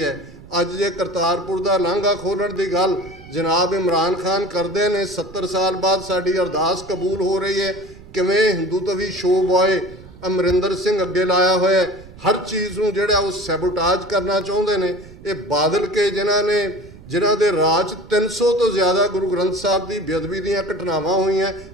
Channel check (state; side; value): noise; right; rumble, 19 dB below the sound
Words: ਅੱਜ ਜੇ ਕਰਤਾਰਪੁਰ ਦਾ ਲਾਂਘਾ ਖੋਲ੍ਹਣ ਦੀ ਗੱਲ ਜਨਾਬ ਇਮਰਾਨ ਖਾਨ ਕਰਦੇ ਨੇ, 70 ਸਾਲ ਬਾਅਦ ਸਾਡੀ ਅਰਦਾਸ ਕਬੂਲ ਹੋ ਰਹੀ ਹੈ। ਕਿਵੇਂ ਹਿੰਦੂਤਵੀ ਸ਼ੋ ਬॉय ਅਮਰਿੰਦਰ ਸਿੰਘ ਅੱਗੇ ਲਾਇਆ ਹੋਇਆ, ਹਰ ਚੀਜ਼ ਨੂੰ ਜਿਹੜਾ ਉਹ ਸੈਬੋਟਾਜ ਕਰਨਾ ਚਾਹੁੰਦੇ ਨੇ। ਇਹ ਬਾਦਲ ਕੇ ਜਿਨ੍ਹਾਂ ਦੇ ਰਾਜ 300 ਤੋਂ ਜ਼ਿਆਦਾ ਗੁਰੂ ਗ੍ਰੰਥ ਸਾਹਿਬ ਦੀ ਬੇਅਦਬੀ ਦੀਆਂ ਘਟਨਾਵਾਂ ਹੋਈਆਂ,